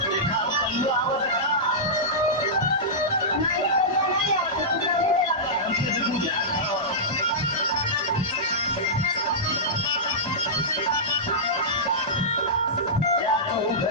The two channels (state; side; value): normal; both; correlation -0.14